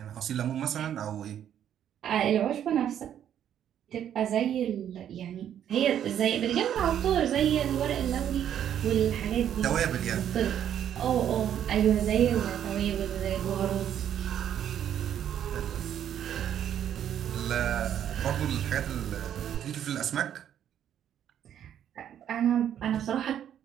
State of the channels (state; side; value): quieter; left; 9.9 dB